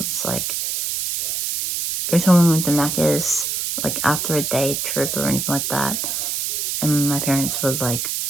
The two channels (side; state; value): right; noise; hiss, 1 dB below the sound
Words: Like, every time we went to Macca's, like after a day trip or anything like that, and my parents would like